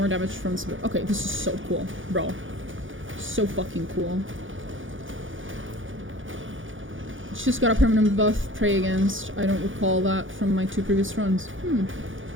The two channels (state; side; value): late; left; 0.57 ms